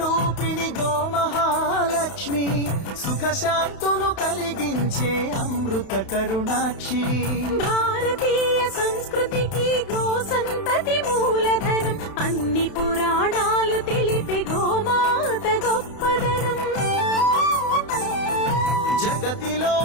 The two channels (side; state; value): right; late; 31 ms